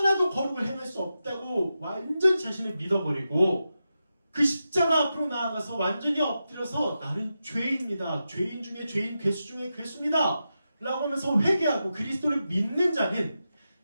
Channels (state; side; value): inverted; both; correlation -0.90